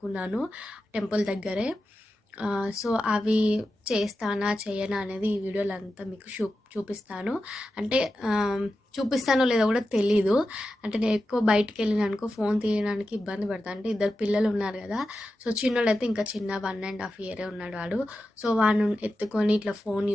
టెంపుల్ దగ్గరే. సో, అవి చేస్తానా, చెయ్యనా అనేది ఈ వీడియోలో అంతా మీకు చూపిస్తాను. అంటే చూపిస్తానో లేదో కూడా తెలీదు. అంటే నేను ఎక్కువ బయటికెళ్ళినానుకో ఫోన్ తీయడానికి ఇబ్బంది పడతా. అంటే ఇద్దరు పిల్లలు ఉన్నారు కదా! సో, చిన్నోడైతే ఇంకా చిన్న 1½ ఇయరే ఉన్నాడు వాడు. సో, వాడిని ఎత్తుకొని ఇట్లా ఫోన్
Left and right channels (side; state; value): both; normal; correlation 0.91